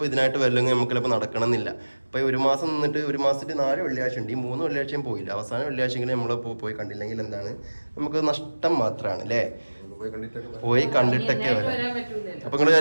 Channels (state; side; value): inverted; both; correlation -1.00